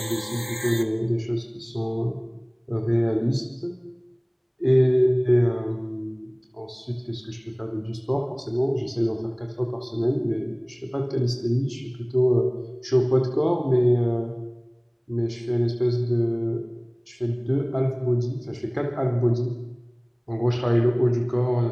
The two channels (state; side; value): identical; both; correlation 1.00